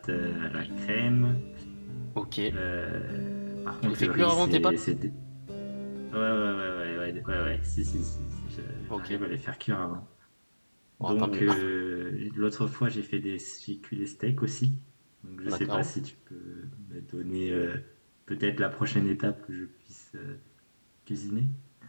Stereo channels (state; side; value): inverted; both; correlation -1.00